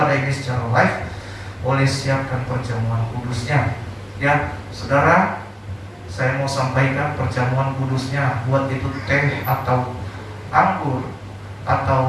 ini secara live, boleh siapkan perjamuan kudusnya. Ya, saudara, saya mau sampaikan perjamuan kudusnya, buat itu teh atau anggur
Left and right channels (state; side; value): identical; both; correlation 1.00